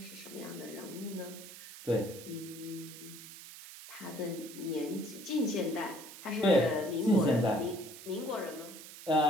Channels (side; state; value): right; noise; hiss, 14 dB below the sound